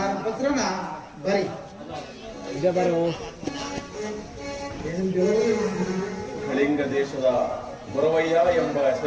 ಪತ್ರನ ಬರಿ ಈಗ ಬರೋ ಕಳಿಂಗ ದೇಶದ ಗೊರವಯ್ಯ ಎಂಬ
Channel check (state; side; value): identical; both; correlation 1.00